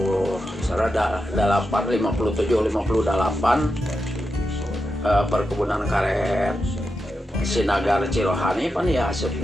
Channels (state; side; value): normal; both; correlation 0.88